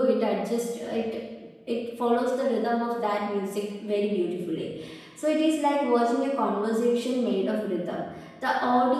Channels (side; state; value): both; identical; correlation 1.00